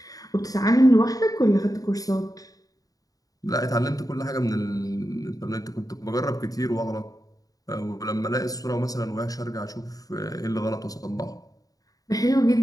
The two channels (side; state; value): right; late; 0.18 ms